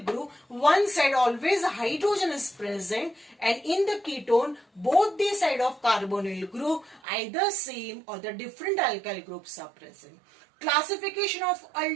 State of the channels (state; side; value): drops out; left; at 7.0 s